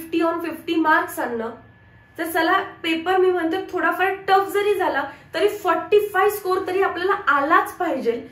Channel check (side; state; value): both; identical; correlation 1.00